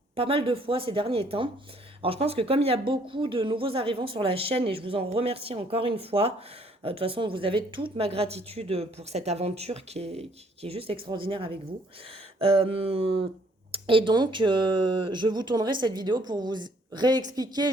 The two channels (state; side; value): normal; both; correlation 0.64